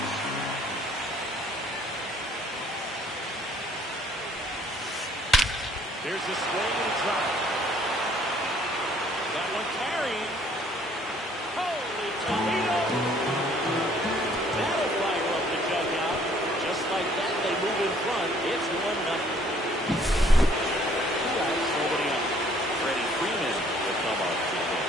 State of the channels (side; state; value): both; normal; correlation 0.60